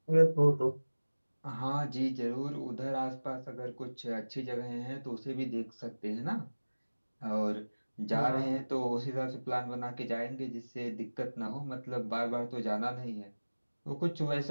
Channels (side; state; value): both; inverted; correlation -1.00